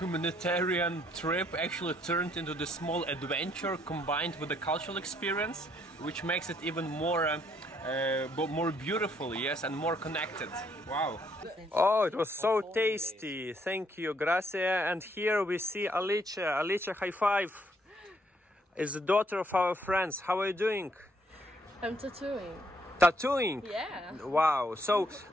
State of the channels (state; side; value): normal; both; correlation 0.69